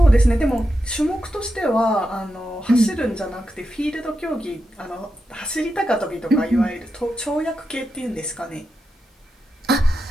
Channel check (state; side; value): normal; both; correlation 0.88